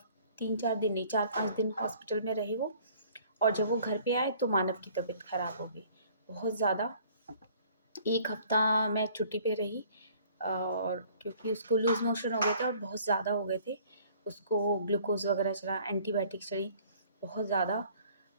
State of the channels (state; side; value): inverted; both; correlation -0.55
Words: 3-4 दिन नहीं, 4-5 दिन हॉस्पिटल में रहे वो। और जब वो घर पे आए तो मानव की तबीयत ख़राब हो गई बहुत ज़्यादा। 1 हफ्ता मैं छुट्टी पे रही और क्योंकि उसको लूज़ मोशन हो गए थे और बहुत ज़्यादा हो गए थे। उसको ग्लूकोज़ वगैरह चढ़ा, एंटीबायोटिक चढ़ी बहुत ज़्यादा।